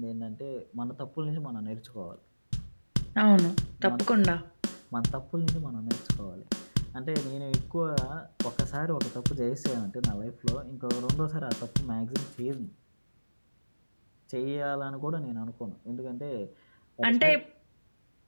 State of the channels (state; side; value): inverted; both; correlation -1.00